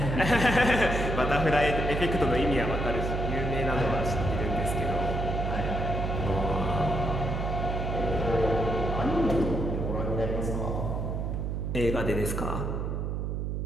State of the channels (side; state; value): right; noise; hum, 2 dB below the sound